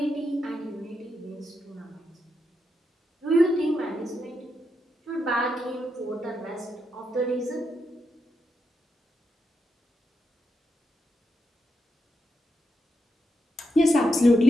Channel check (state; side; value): normal; both; correlation 0.84